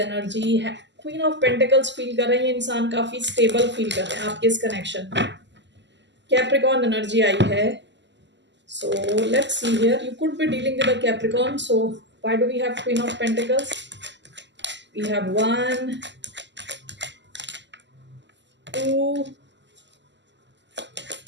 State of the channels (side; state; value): left; late; 0.52 ms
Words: Queen of Pentacles feel कर रहे हैं, इंसान काफी stable feel कर रहे हैं आपके इस कनेक्शन में. Capricorn energy आई है. So let's see here. You could be dealing with a Capricorn. So why do we have Queen of Pentacles? We have 1, 2,